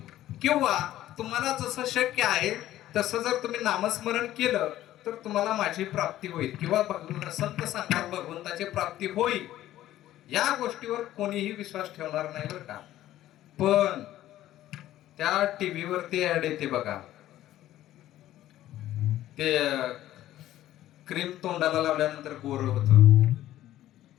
किंवा तुम्हाला जसं शक्य आहे तसं जर तुम्ही नामस्मरण केलं तर तुम्हाला माझी प्राप्ती होईल किंवा संत सांगतात भगवंताची प्राप्ती होईल, या गोष्टीवर कोणीही विश्वास ठेवणार नाही बरं का. पण त्या टीव्हीवरती ऍड येते बघा, ते क्रीम तोंडाला लावल्यानंतर गोर होतं,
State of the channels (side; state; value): right; quieter; 13.8 dB